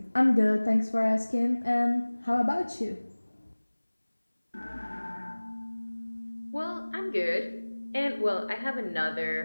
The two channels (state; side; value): inverted; both; correlation -1.00